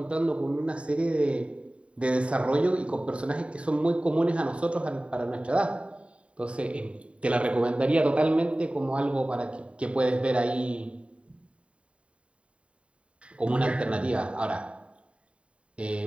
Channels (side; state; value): left; late; 0.061 ms